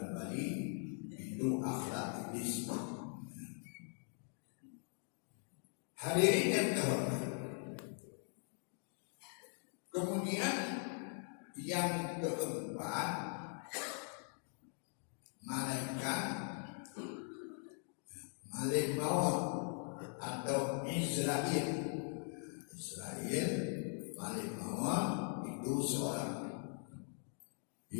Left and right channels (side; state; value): right; silent; 50 dB below the other